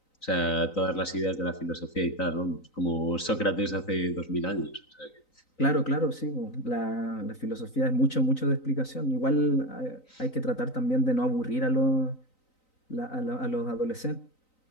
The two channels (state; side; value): late; right; 3.9 ms